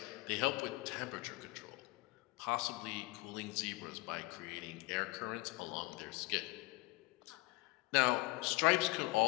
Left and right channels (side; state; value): right; quieter; 23.0 dB